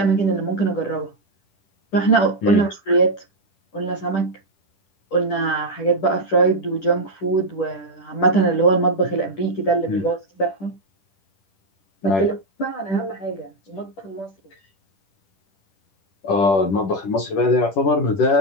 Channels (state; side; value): late; right; 10 ms